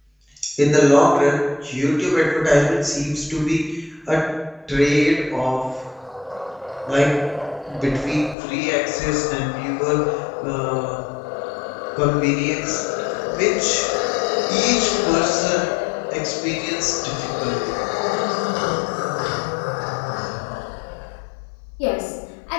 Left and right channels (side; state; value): right; drops out; at 8.3 s